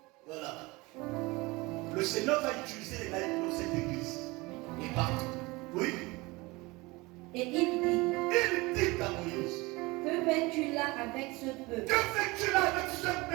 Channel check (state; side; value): quieter; left; 23.2 dB